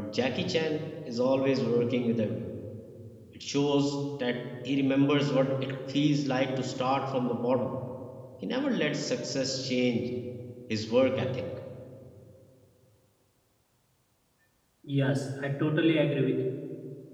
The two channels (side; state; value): both; identical; correlation 1.00